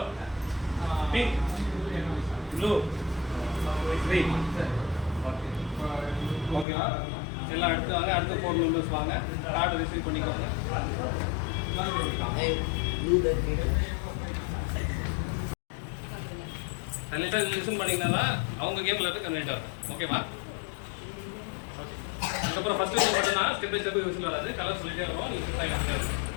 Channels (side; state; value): right; drops out; at 6.7 s